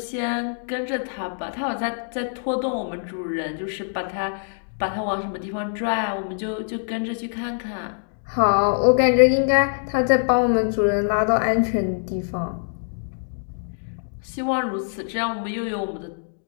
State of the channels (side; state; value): right; silent; digital silence